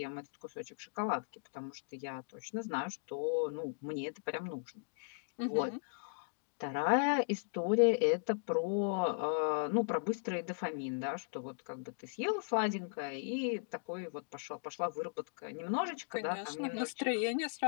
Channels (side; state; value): right; silent; digital silence